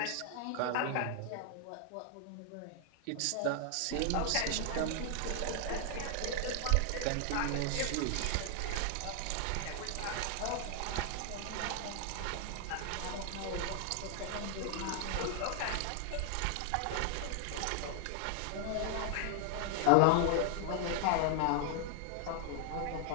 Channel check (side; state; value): both; different; correlation 0.00